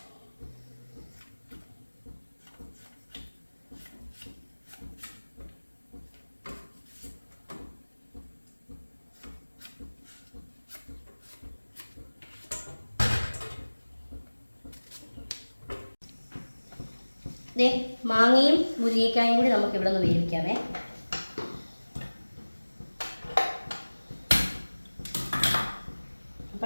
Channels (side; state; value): both; inverted; correlation -1.00